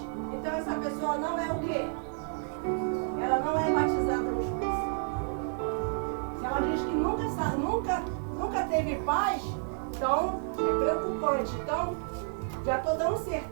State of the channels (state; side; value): silent; left; 57 dB below the other